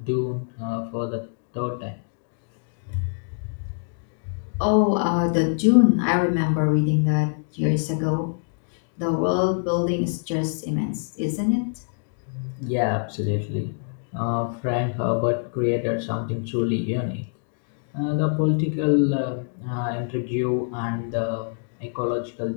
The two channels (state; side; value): silent; right; digital silence